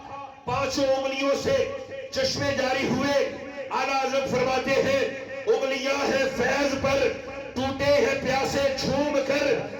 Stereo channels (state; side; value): identical; both; correlation 1.00